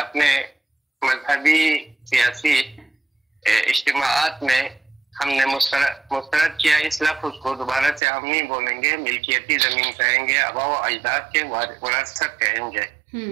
مذہبی سیاسی اجتماعات میں ہم نے مسترد کیا. اس لفظ کو دوبارہ سے ہم نہیں بولیں گے، ملکیتی زمین کہیں گے، آباء و اجداد کے وراثت کہیں گے.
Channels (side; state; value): left; drops out; at 8.0 s